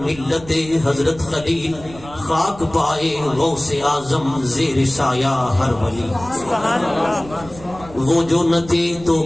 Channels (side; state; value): right; noise; rumble, 18 dB below the sound